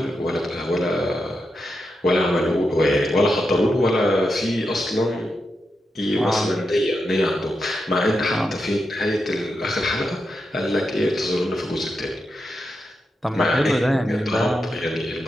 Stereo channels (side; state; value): both; normal; correlation 0.87